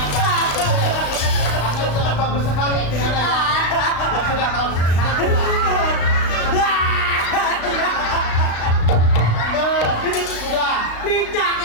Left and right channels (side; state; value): right; late; 35 ms